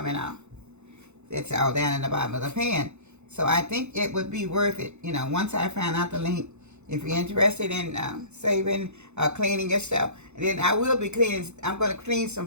out. That's all down in the bottom of the pan. So I think it would be worth it, you know, once I find out the link. If you're interested in saving, cleaning your stuff, and then I will be cleaning. I'm going to clean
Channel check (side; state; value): left; late; 0.82 ms